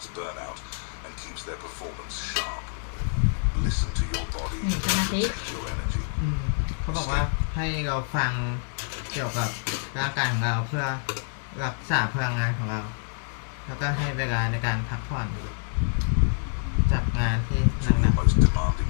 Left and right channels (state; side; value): silent; right; 60 dB below the other